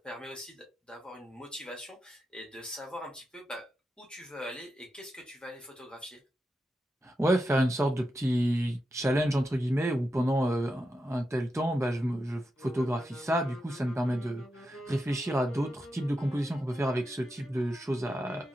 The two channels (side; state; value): both; normal; correlation 0.88